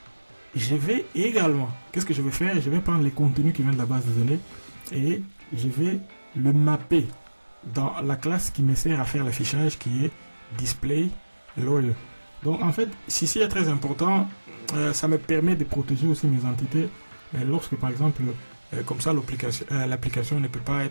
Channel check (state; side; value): inverted; both; correlation -1.00